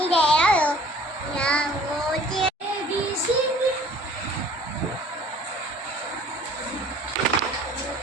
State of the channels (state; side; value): normal; both; correlation 0.51